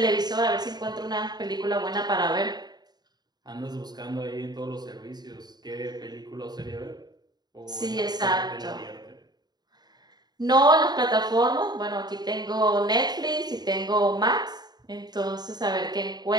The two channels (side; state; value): left; late; 0.20 ms